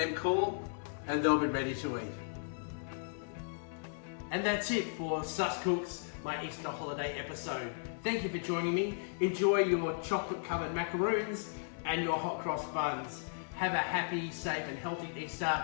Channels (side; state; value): right; silent; digital silence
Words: cool, and they'll be ready to eat. And that's it for Sus Cooks, my Easter holiday episode. Thank you for joining me. Enjoy your chocolate-covered macaroons and your hot cross buns. Have a happy, safe and healthy Easter